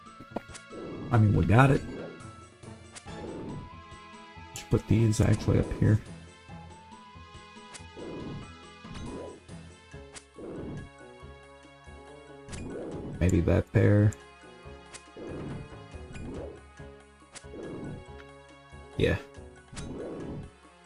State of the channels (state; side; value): identical; both; correlation 1.00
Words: I mean, we got it. Should put these actually up here. Maybe that there. Yeah.